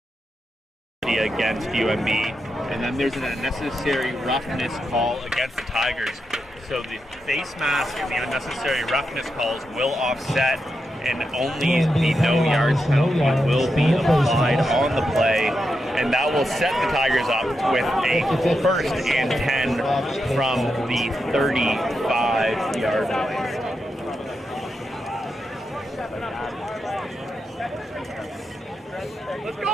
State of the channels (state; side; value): normal; both; correlation 0.86